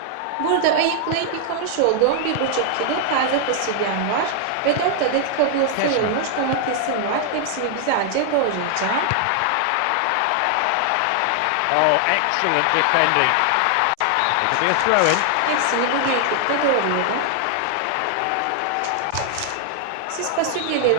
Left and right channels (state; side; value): different; both; correlation 0.00